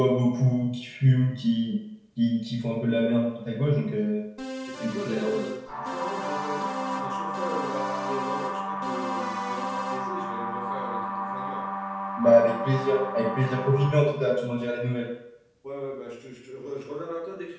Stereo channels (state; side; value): identical; both; correlation 1.00